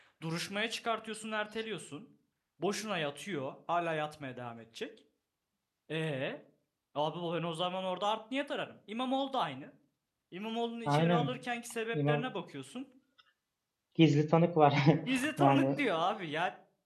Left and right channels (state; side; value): identical; both; correlation 1.00